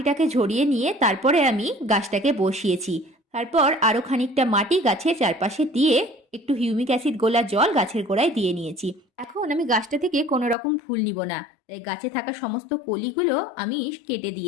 ঝরিয়ে নিয়ে তারপরে আমি গাছটাকে বসিয়েছি। তারপর আরও খানিকটা মাটি গাছের চারপাশে দিয়ে একটু হিউমিক অ্যাসিড গোলা জল গাছের গোড়ায় দিয়ে নিয়েছি। এখন আমি গাছটা থেকে কোনো রকম ফুল নিব না, তাই গাছে থাকা সমস্ত কলিগুলো আমি কেটে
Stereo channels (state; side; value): drops out; right; at 10.6 s